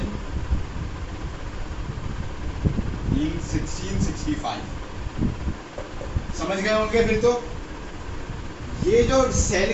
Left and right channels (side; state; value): both; identical; correlation 1.00